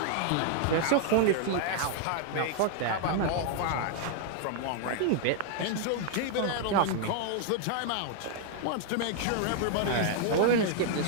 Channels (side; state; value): both; different; correlation 0.00